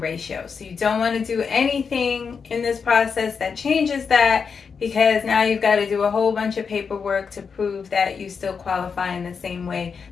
So you don't want to do anything in this process that changes that, because now you've got to do a whole bunch of paperwork to prove that you still qualify in the same way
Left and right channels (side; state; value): right; quieter; 5.9 dB